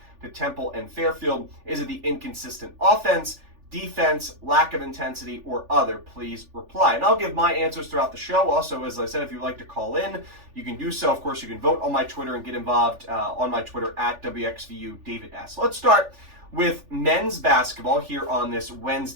to Temple and Fairfield? Is it the inconsistent offense, defense, lack of intensity, or other? Please reply. And I'll give my answers throughout the show. Also, as I said, if you'd like to call in, you can do so. Of course, you can vote on my Twitter and get involved on my Twitter at WXVU David S. Let's start with men's basketball here on this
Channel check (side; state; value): left; late; 3.4 ms